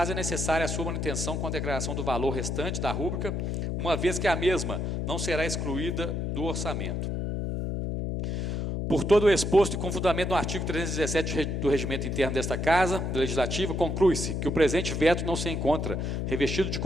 é necessária a sua manutenção com a declaração do valor restante da rúbrica, uma vez que a mesma não será excluída do orçamento. Por todo o exposto e com fundamento no artigo 317 do Regimento Interno desta Casa Legislativa, conclui-se que o presente veto não se encontra revestido de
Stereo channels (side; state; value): left; noise; hum, 1 dB below the sound